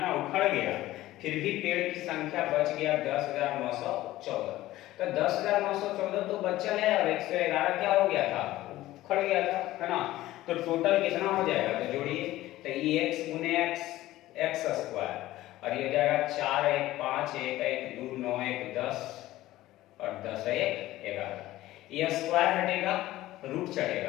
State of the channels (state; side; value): quieter; right; 16.0 dB